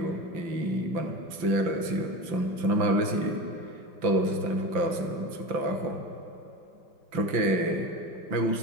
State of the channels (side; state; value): left; late; 5.9 ms